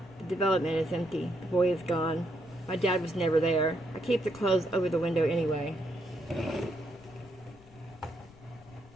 The development is empty. The boy is gone. My dad was never there. I keep the clothes over the window anyway.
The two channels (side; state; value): left; noise; rumble, 23 dB below the sound